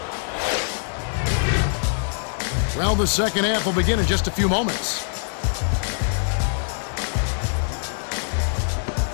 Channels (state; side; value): silent; right; digital silence